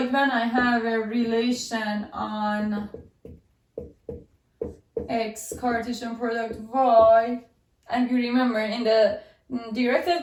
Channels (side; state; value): both; identical; correlation 1.00